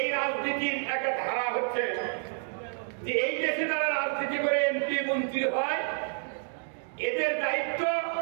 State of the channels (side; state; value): left; silent; digital silence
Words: রাজনীতির একটা ধারা হচ্ছে যে এই দেশে যারা রাজনীতি করে এমপি মন্ত্রী হয়, এদের দায়িত্ব